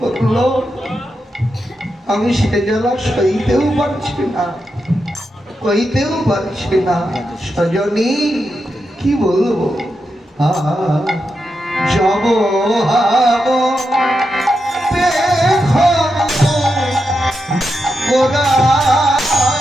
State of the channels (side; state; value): both; normal; correlation 0.87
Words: আমি সে জ্বালা সইতেও পারছি না, কইতেও পারছি না। সজনী কি বলবো, যাব হাব গোরা